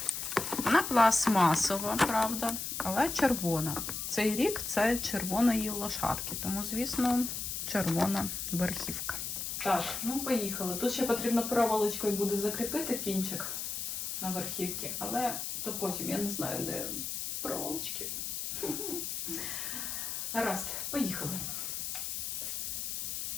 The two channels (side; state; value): left; noise; hiss, 4 dB below the sound